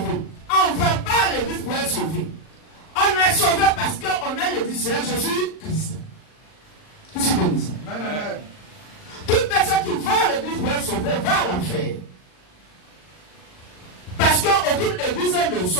On ne va pas à l'église pour être sauvé. On est sauvé parce qu'on est l'église Seigneur Jésus-Christ. Qui se bénisse. Amen. Toute personne qui va à l'église pour être sauvé va à l'enfer. Parce qu'aucune église ne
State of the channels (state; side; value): late; right; 39 ms